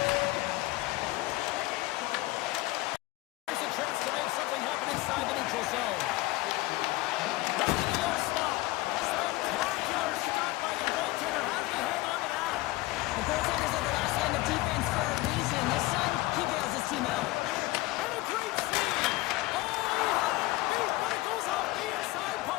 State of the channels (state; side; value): quieter; right; 19.5 dB